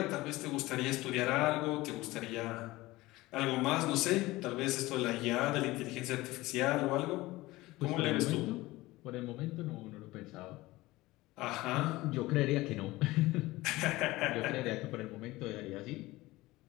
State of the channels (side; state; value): right; quieter; 19.2 dB